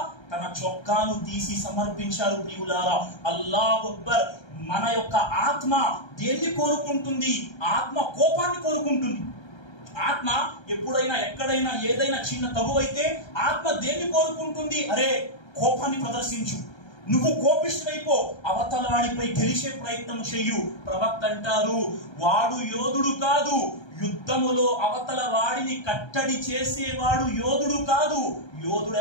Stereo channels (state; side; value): late; right; 1.3 ms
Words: తన చొక్కాను తీసి సమర్పించారు. ప్రియులారా, అల్లాహు అక్బర్. మన యొక్క ఆత్మ దేన్ని కోరుకుంటుంది? ఆత్మ కోపాన్ని కోరుకుంటుంది. ఆత్మ ఎప్పుడైనా ఎక్కడైనా ఏదైనా చిన్న తగువైతే ఆత్మ దేన్ని కోరుకుంటుంది? అరే, కోపాన్ని ప్రదర్శించు, నువ్వు కోపిష్ఠుడైపో, అవతల వాడిపై గెలిచే ప్రయత్నం చెయ్యు. ప్రవక్త అంటారు, వాడు యోధుడు కాదు, యుద్ధములో అవతల వాడిని కట్టడి చేసేవాడు యోధుడు కాదు. యోధుడు